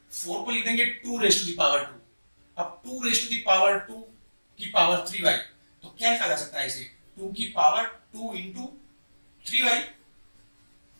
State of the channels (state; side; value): inverted; both; correlation -1.00